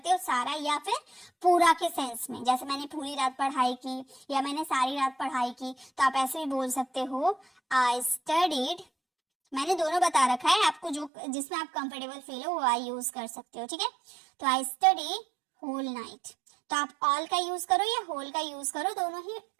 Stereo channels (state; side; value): drops out; left; at 11.1 s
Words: हो, सारा या फिर पूरा के सेंस में, जैसे मैंने पूरी रात पढ़ाई की या मैंने सारी रात पढ़ाई की, तो आप ऐसे भी बोल सकते हो आई स्टडीड। मैंने दोनों बता रखा है, आपको जो जिसमें आप कंफर्टेबल फील हो वो आई यूज कर सकते हो। ठीक है, तो आई स्टडी होल नाइट। तो आप ऑल का यूज करो या होल का यूज करो, दोनों ही